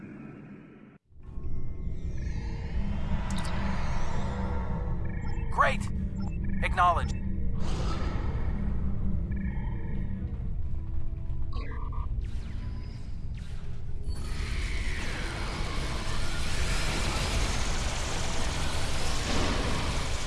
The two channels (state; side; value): identical; both; correlation 1.00